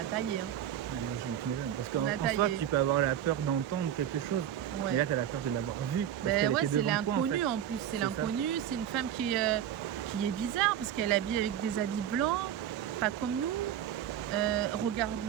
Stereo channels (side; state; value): left; quieter; 10.4 dB